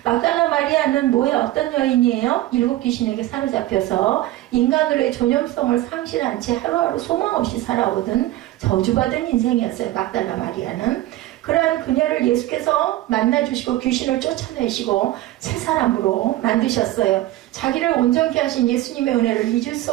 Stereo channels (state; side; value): quieter; left; 15.5 dB